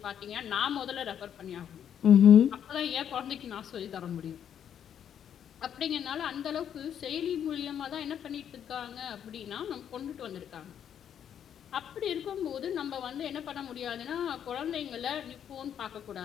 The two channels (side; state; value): right; quieter; 9.1 dB